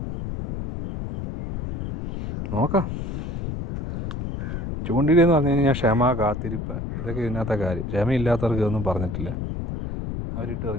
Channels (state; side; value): noise; left; rumble, 5 dB below the sound